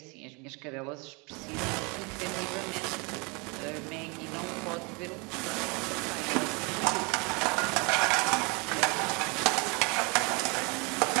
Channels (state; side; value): quieter; left; 30.1 dB